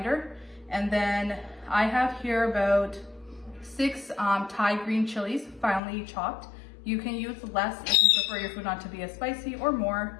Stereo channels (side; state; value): right; drops out; at 5.8 s